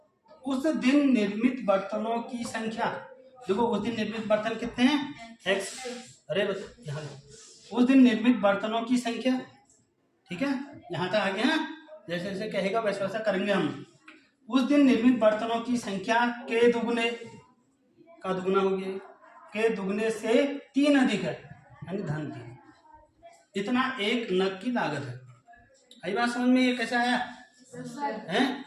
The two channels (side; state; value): both; identical; correlation 1.00